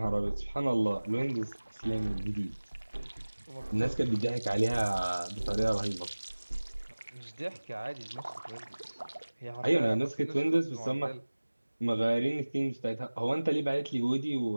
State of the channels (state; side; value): inverted; both; correlation -1.00